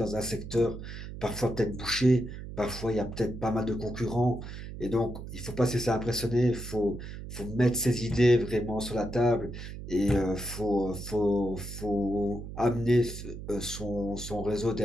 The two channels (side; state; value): right; noise; hum, 10 dB below the sound